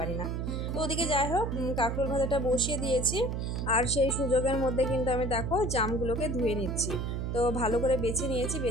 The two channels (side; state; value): right; noise; hum, 2 dB below the sound